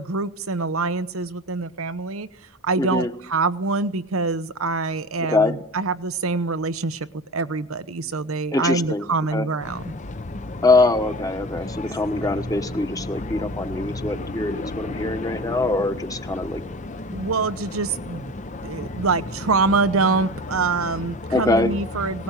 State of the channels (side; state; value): both; normal; correlation 0.35